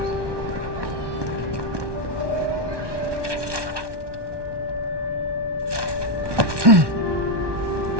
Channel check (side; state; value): left; late; 1.2 ms